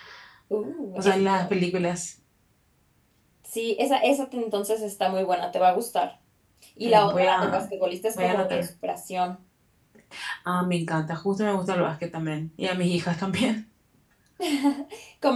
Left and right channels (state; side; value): identical; both; correlation 1.00